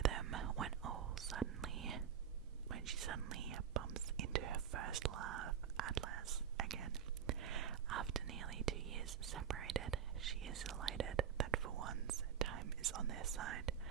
when she suddenly bumps into her first love, Atlas, again. After nearly 2 years separated, she is elated that for once time is on their side,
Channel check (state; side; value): quieter; left; 8.5 dB